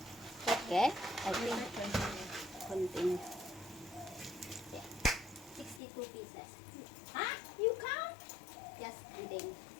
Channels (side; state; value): right; drops out; at 5.8 s